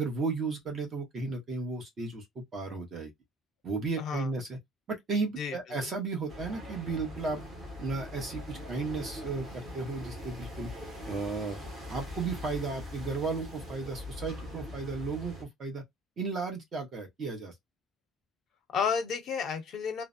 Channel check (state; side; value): normal; both; correlation 0.50